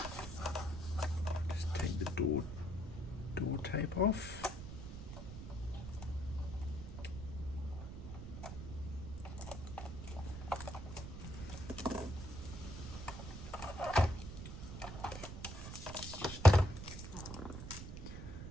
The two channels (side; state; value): right; noise; rumble, 8 dB below the sound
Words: Just take the door tape off.